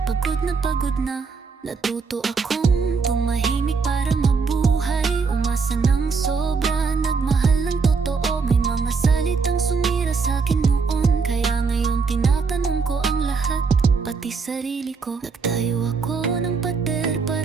pagod na. Natuto akong tumahimik para mabuhay. Umasa ng sobra, nagmahal ng totoo. May mga salitang sumira sa'kin noon, kaya ngayon tinatanong ko ang lahat, pati sarili ko. Nagtayo ako ng pader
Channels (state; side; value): quieter; left; 5.0 dB